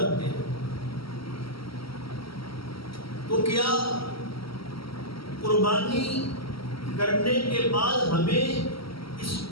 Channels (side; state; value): right; late; 0.75 ms